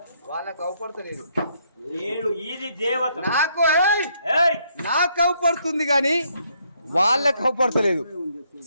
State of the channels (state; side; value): inverted; both; correlation -0.71